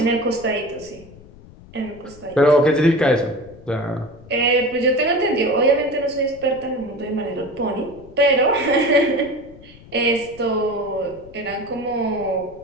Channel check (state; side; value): noise; left; rumble, 21 dB below the sound